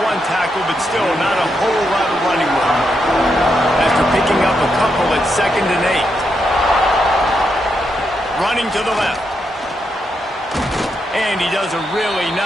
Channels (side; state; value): both; normal; correlation 0.82